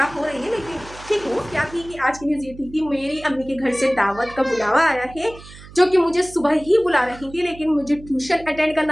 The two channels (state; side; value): noise; right; hum, 18 dB below the sound